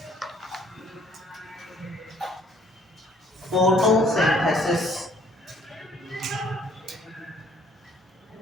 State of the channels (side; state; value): both; normal; correlation 0.60